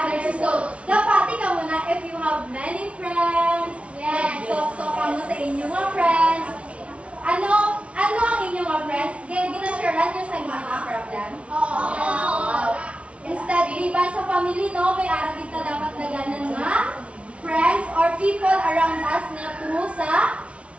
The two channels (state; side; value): late; left; 0.062 ms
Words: Dapati ka muna if you have many friends, talk ka mo sa inyong mga friends. Ano ang inyong mga friends? Ginasharean nyo sa mga problem? Instead, liban sa family, no, may arang kita dapat naganan nga friends or people around us na tumo sa